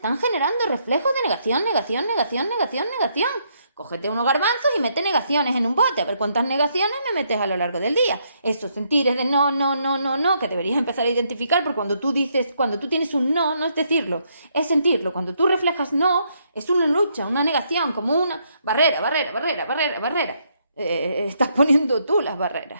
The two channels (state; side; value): inverted; both; correlation -0.74